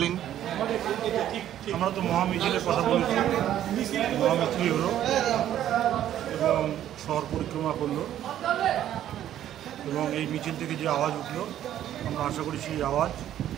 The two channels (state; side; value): quieter; left; 11.6 dB